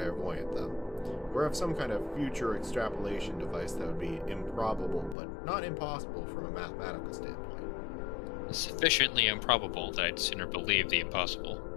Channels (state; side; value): drops out; right; at 5.2 s